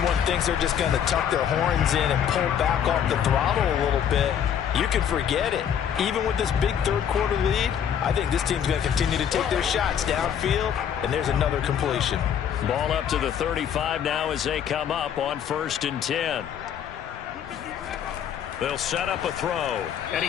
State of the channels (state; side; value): quieter; right; 8.8 dB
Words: thinks they're just going to tuck their horns in and pull back off the throttle a little bit, you can forget it. Even with this big third quarter lead, I think this team's going to continue to take their shots downfield, and there's another completion. Ball up to the 35 now as they come up on 1st and 10. They'll set up a throw, and